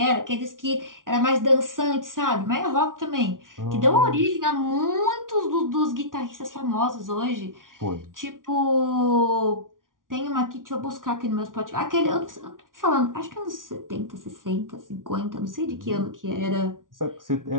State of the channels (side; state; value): left; late; 0.89 ms